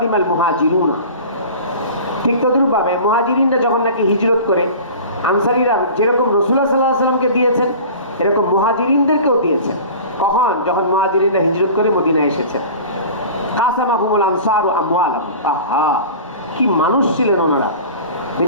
মুহাজিরুনা। ঠিক তদ্রূপভাবে মুহাজিরিনরা যখন নাকি হিজরত করে, আনসারীরা যেরকম রাসূলুল্লাহ সাল্লাল্লাহু আলাইহি ওয়াসাল্লামকে দিয়েছেন, এরকম মুহাজিরিনদেরকেও দিয়েছেন। কখন? যখন মুহাজিরিনরা হিজরত করে মদিনায় এসেছেন। কাসামাহুমুল আনসারু আমওয়ালাহুম। আহা, কি মানুষ ছিলেন ওনারা!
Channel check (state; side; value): inverted; both; correlation -0.39